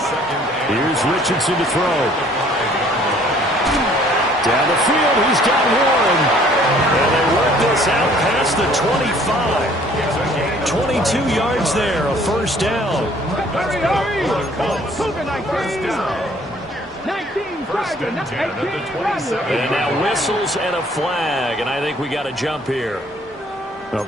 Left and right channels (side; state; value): both; normal; correlation 0.58